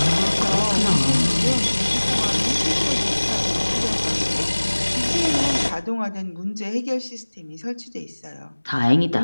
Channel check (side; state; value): both; inverted; correlation -1.00